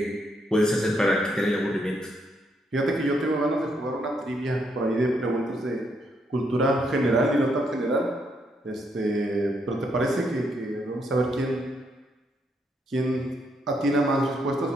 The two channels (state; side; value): normal; both; correlation 0.76